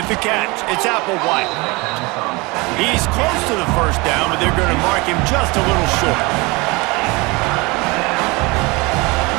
the catch, it's Applewhite. He's close to the first down, but they're going to mark him just a little short.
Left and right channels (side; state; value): left; quieter; 25.2 dB